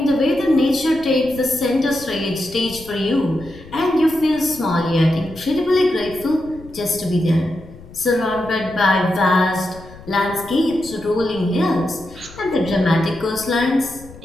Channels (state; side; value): noise; left; rumble, 19 dB below the sound